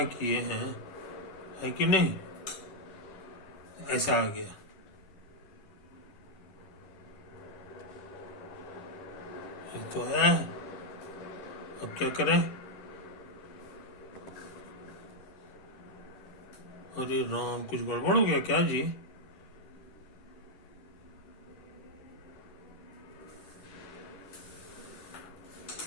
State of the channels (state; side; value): late; right; 11 ms